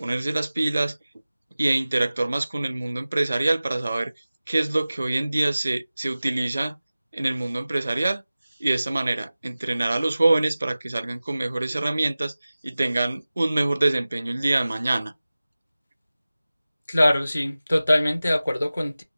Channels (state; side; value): inverted; both; correlation -0.97